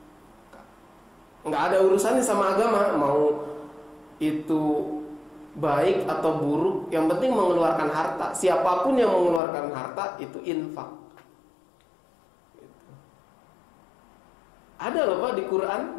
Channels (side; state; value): right; drops out; at 9.4 s